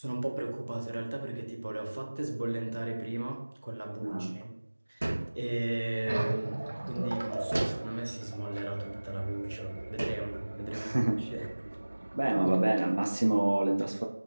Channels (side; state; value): both; inverted; correlation -1.00